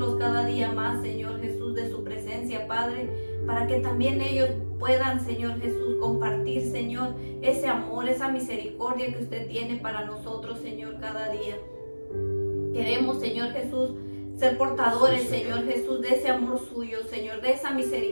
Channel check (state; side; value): inverted; both; correlation -1.00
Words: cada día más, Señor Jesús, de su presencia, Padre, para que también ellos puedan, Señor Jesús, compartir, Señor, ese amor, esa misericordia que usted tiene para nosotros, Señor, cada día. Queremos, Señor Jesús, ser portadores, Señor Jesús, de ese amor suyo, Señor, de esa